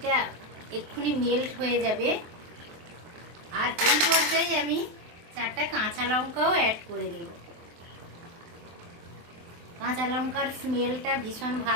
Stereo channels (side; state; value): left; late; 23 ms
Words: এক্ষুনি মেল্ট হয়ে যাবে। আর এই পর্যায়ে আমি 4টা কাঁচা লঙ্কাও অ্যাড করে দেব। কাঁচা লঙ্কার স্মেলটা ভীষণ